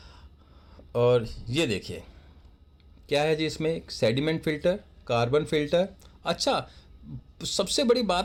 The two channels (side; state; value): both; identical; correlation 1.00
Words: और ये देखिए क्या है जी, इसमें एक सेडिमेंट फ़िल्टर, कार्बन फ़िल्टर। अच्छा, सबसे बड़ी